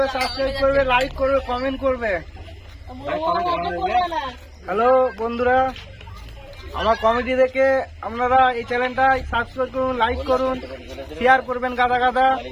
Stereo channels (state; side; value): identical; both; correlation 1.00